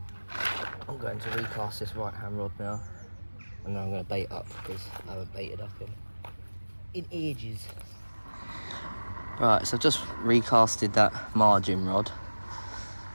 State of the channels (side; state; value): both; inverted; correlation -1.00